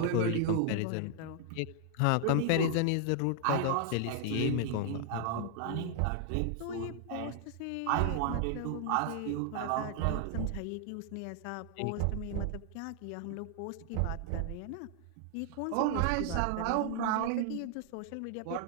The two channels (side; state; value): both; different; correlation 0.00